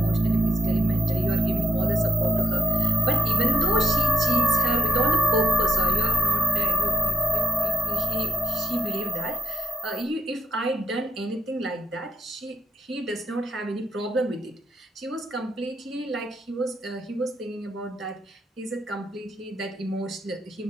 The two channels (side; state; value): both; normal; correlation 0.73